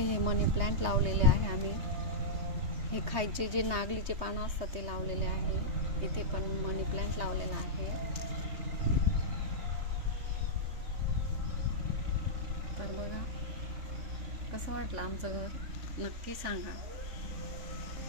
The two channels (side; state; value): left; late; 3.2 ms